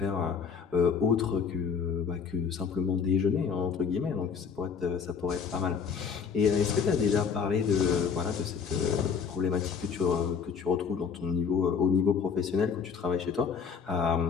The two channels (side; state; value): right; quieter; 6.3 dB